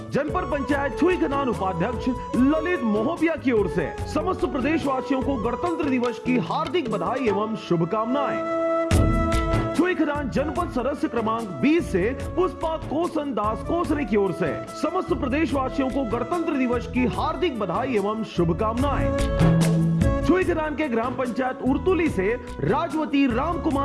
जनपद पंचायत छुईखदान उपाध्यक्ष ललित मोहबिया की ओर से समस्त प्रदेशवासियों को गणतंत्र दिवस की हार्दिक बधाई एवं शुभकामनाएं। छुईखदान जनपद सदस्य क्रमांक 20 से पुष्पा कोसन दास कोसरे की ओर से समस्त प्रदेशवासियों को गणतंत्र दिवस की हार्दिक बधाई एवं शुभकामनाएं। छुईखदान के ग्राम पंचायत उर्तुली से राजवती राम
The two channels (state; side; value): identical; both; correlation 1.00